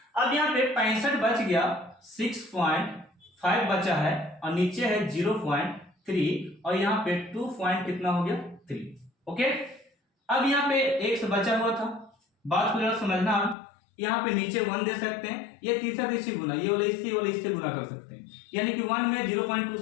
अब यहाँ पे 65 बच गया, 6.5 बचा है और नीचे है 0.3 और यहाँ पे 2 कितना हो गया 3। ओके, अब यहाँ पे x बचा हुआ था, बात को जरा समझना। यहाँ पे नीचे 1 दे सकते हैं, ये तीसरा तीसरी गुना, ये वाला इससे गुना कर सकते हैं, यानी कि 1 में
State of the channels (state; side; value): drops out; right; at 13.6 s